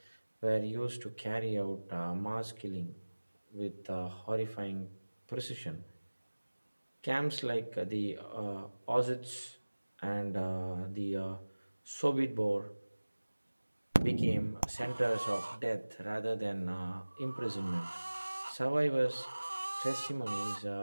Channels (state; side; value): inverted; both; correlation -1.00